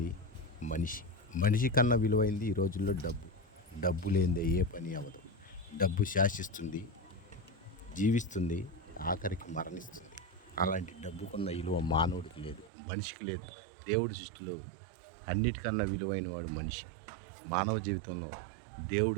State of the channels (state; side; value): drops out; left; at 12.7 s